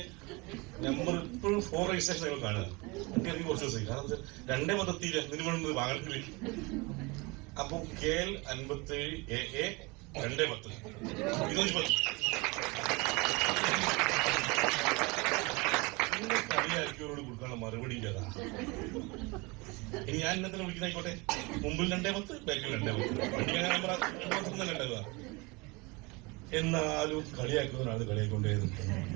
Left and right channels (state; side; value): quieter; left; 26.0 dB